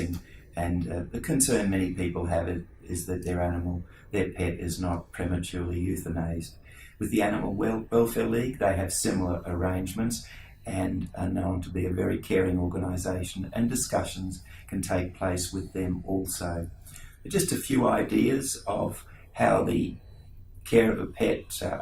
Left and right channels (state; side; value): identical; both; correlation 1.00